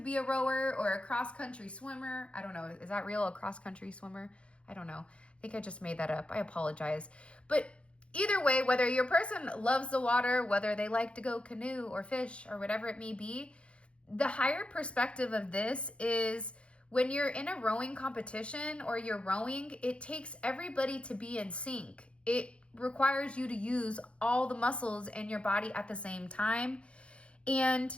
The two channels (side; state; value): right; late; 0.059 ms